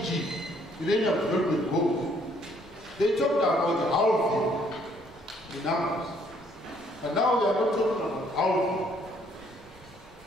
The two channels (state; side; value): normal; both; correlation 0.65